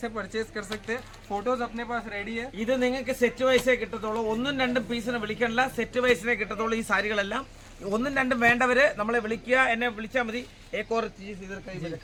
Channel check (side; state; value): both; identical; correlation 1.00